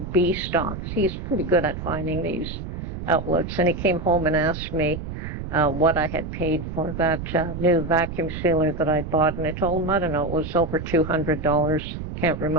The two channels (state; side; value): noise; right; rumble, 7 dB below the sound